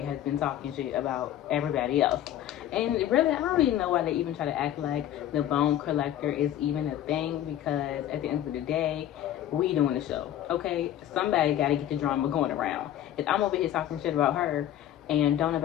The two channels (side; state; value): right; quieter; 11.9 dB